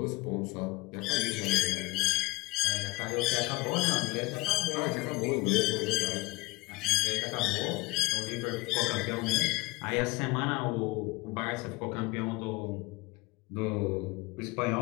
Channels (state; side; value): quieter; right; 22.5 dB